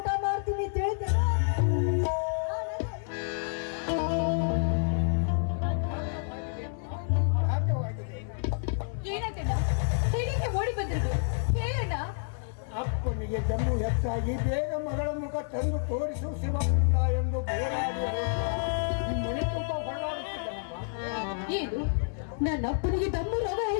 ಮಾಡ್ತೀನಿ ತಿಳಿತೇನೆ. ಏನಾಗಣ್ಣ, ಹೇಗೆ ಓಡಿ ಬಂದಿರೋದು ಹೇಳಣ್ಣ. ಅಪ್ಪನಿಗೆ ಜಮ್ಮು ಹೆಚ್ಚಾಗಿ ಬೇಗ ಮಗಳ ಮುಖ ತಂದು ತೋರಿಸು ಶಿವಪುತ್ರ ಎಂದು ಬೋರಾಡಿ ಮನೆ ತುಂಬ ಹೊರಡಾಡುತ್ತಿದ್ದನಮ್ಮ. ಏನು, ನನ್ನ ಅಪ್ಪನಿಗೆ ದಮ್ಮು ರೋಗ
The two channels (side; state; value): right; silent; 58 dB below the other